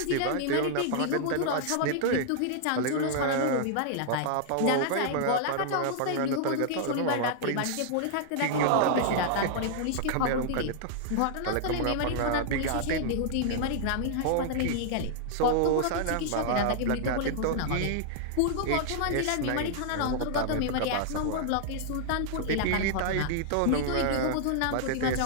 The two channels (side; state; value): both; different; correlation -0.01